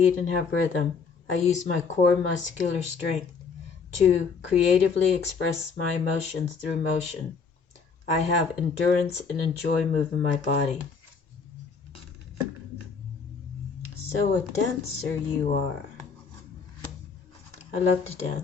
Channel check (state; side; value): quieter; right; 5.4 dB